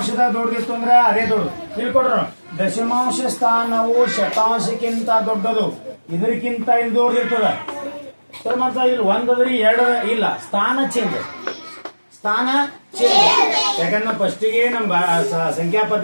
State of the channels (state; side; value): inverted; both; correlation -1.00